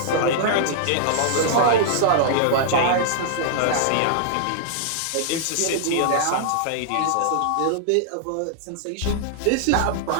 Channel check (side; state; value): both; different; correlation -0.01